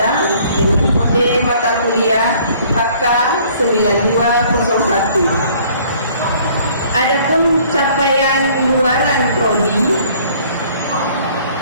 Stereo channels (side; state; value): both; inverted; correlation -0.57